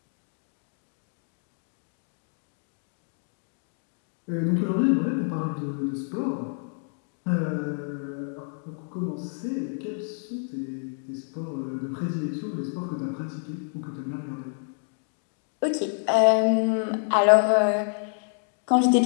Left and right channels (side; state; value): right; silent; 59 dB below the other